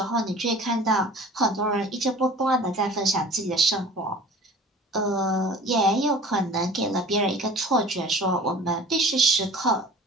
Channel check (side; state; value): both; normal; correlation 0.43